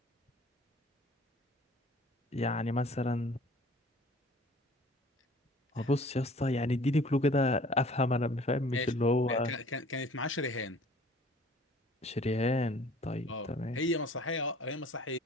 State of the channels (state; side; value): normal; both; correlation 0.50